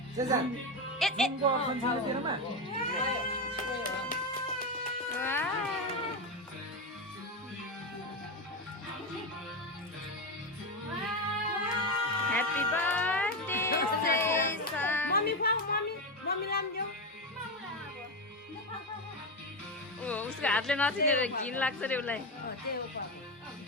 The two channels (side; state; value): both; normal; correlation 0.13